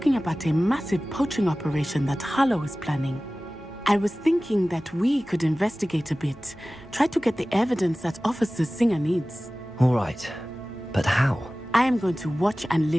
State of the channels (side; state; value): both; normal; correlation 0.97